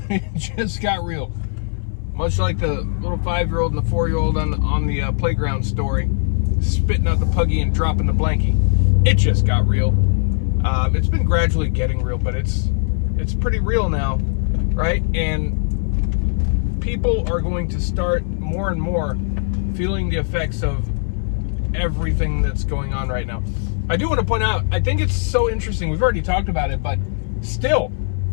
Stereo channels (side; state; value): right; silent; 60 dB below the other